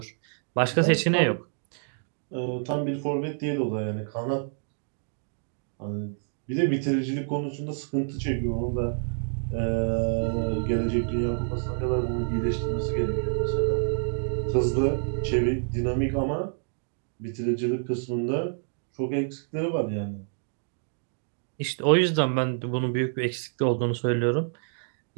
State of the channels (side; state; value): left; silent; digital silence